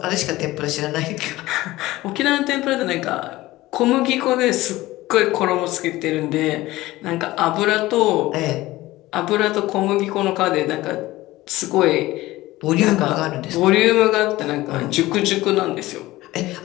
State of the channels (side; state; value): right; quieter; 17.8 dB